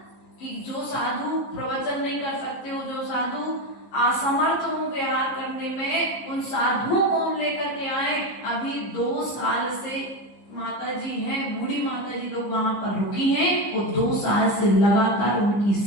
कि जो साधु प्रवचन नहीं कर सकते हो, जो साधु असमर्थ हो व्यवहार करने में, उन साधुओं को हम लेकर के आए। अभी 2 साल से माता जी हैं, बूढ़ी माता जी लोग वहां पर रुकी हैं, वो 2 साल से लगातार उनकी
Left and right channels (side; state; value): right; late; 15 ms